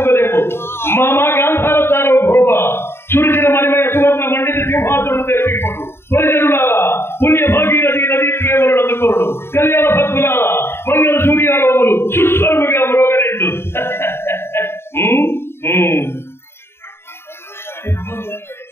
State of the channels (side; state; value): right; late; 0.12 ms